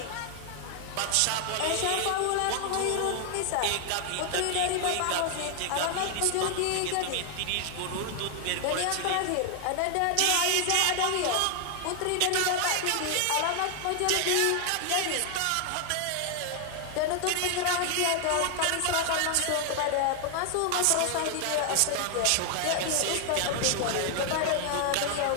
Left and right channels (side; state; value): both; different; correlation 0.00